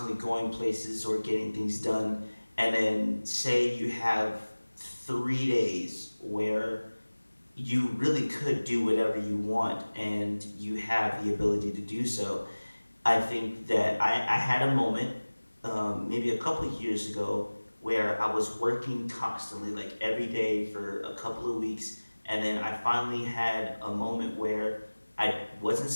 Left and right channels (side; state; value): both; inverted; correlation -1.00